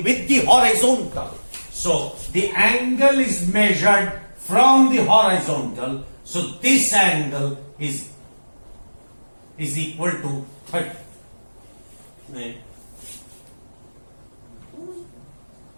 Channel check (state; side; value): inverted; both; correlation -1.00